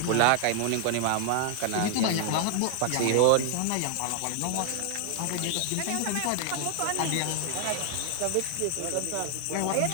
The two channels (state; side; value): different; both; correlation 0.00